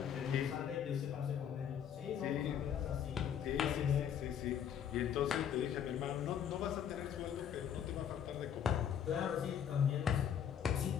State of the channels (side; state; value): right; quieter; 8.8 dB